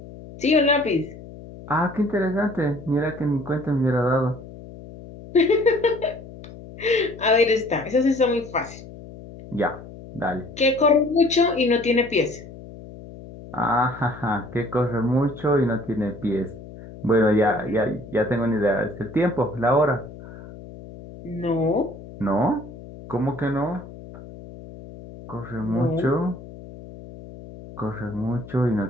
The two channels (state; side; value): noise; left; hum, 16 dB below the sound